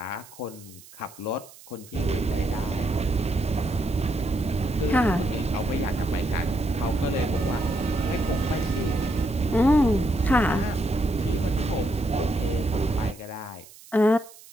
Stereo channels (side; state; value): right; noise; hiss, 21 dB below the sound